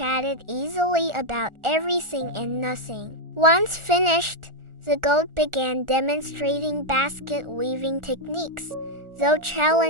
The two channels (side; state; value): left; late; 1.4 ms